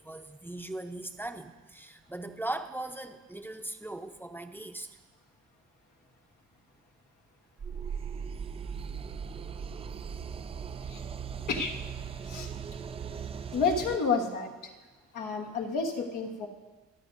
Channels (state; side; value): normal; both; correlation 0.34